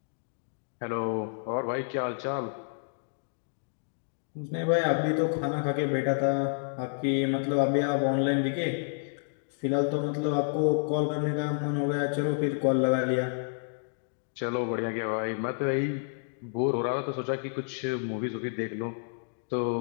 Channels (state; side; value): silent; right; digital silence